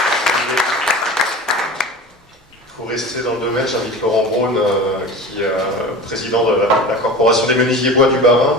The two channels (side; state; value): both; normal; correlation 0.34